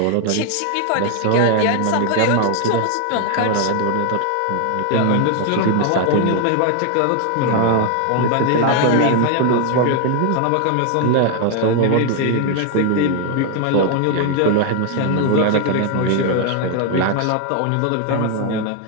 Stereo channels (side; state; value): both; different; correlation 0.00